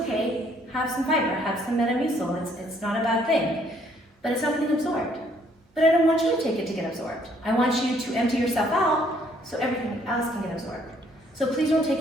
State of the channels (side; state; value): both; normal; correlation 0.65